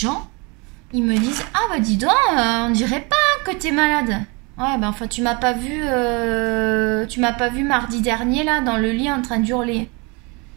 ils me disent, ah bah dis donc, on dirait pas que t'es malade. Ouais, ben enfin tu m'as pas vu mardi dernier là dans le lit en train d'hurler.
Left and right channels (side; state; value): left; quieter; 29.6 dB